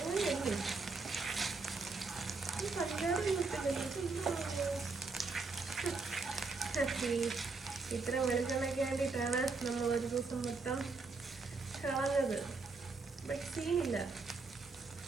ഇത്ര വെളിച്ചെണ്ണയ്ക്ക് വേണ്ടിയിട്ടാണ് നമ്മൾ ഒരു ദിവസം മൊത്തം കളഞ്ഞത്. ബട്ട് സീനില്ല.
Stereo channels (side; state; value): left; quieter; 4.0 dB